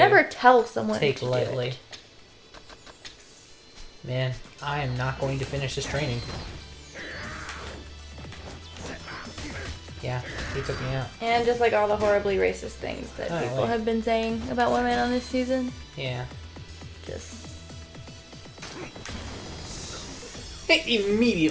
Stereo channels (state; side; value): identical; both; correlation 1.00